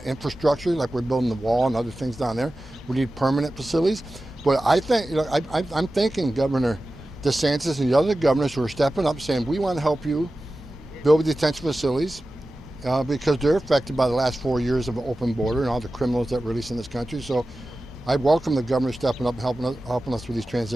infrastructure, like we're building the wall and other things down there. We need permanent facilities. But I think, you know, I'm thanking Governor DeSantis and the other governors who are stepping up saying, we want to help you build detention facilities because they're affected by the last 4 years of an open border and all the criminals that release in this country. So I welcome the governor stepping up and helping us with these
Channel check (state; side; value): normal; both; correlation 0.95